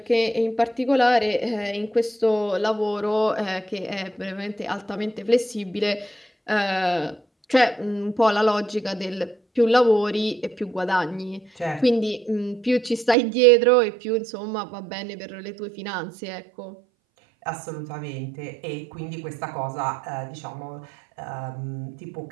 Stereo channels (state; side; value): drops out; left; at 13.2 s